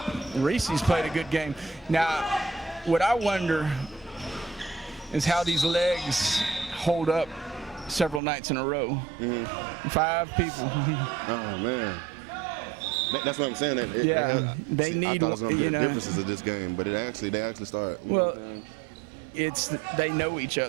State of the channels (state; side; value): drops out; left; at 8.2 s